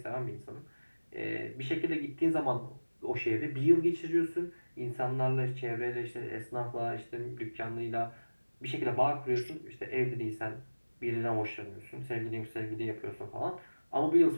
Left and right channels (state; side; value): inverted; both; correlation -1.00